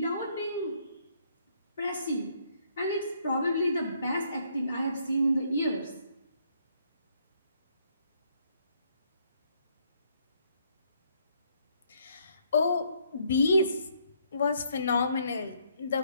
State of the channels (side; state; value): both; inverted; correlation -0.69